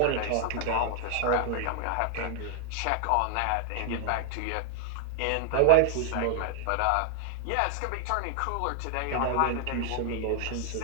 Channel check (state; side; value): different; both; correlation -0.01